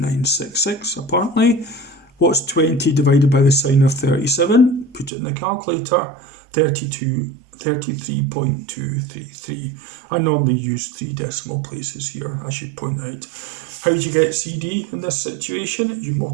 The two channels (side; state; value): left; drops out; at 5.1 s